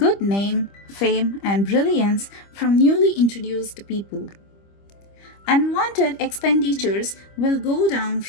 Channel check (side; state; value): right; late; 25 ms